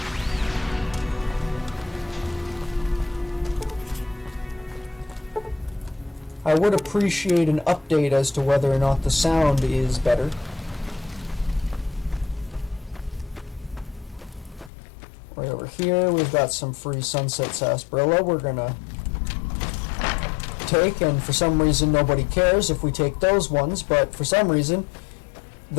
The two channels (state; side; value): drops out; right; at 14.7 s